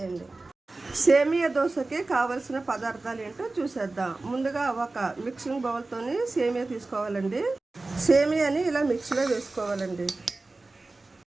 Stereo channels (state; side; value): quieter; left; 3.3 dB